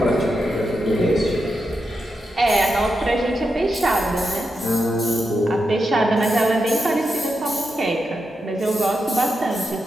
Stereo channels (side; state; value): both; normal; correlation 0.86